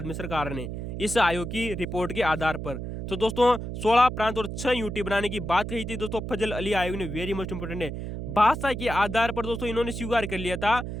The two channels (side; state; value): right; noise; hum, 6 dB below the sound